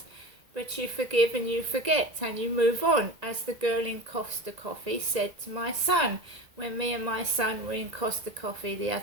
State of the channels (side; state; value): left; late; 1.9 ms